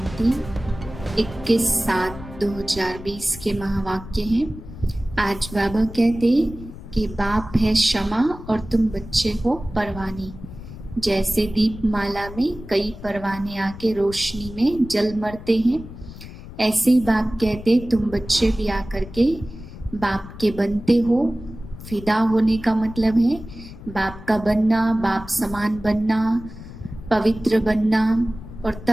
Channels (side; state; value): left; noise; rumble, 14 dB below the sound